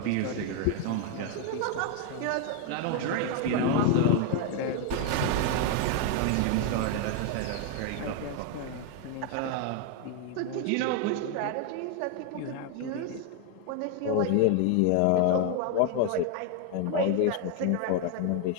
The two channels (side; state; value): both; different; correlation 0.01